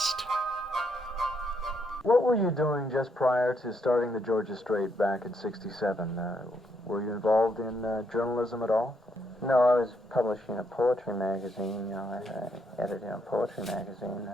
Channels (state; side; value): normal; both; correlation 0.75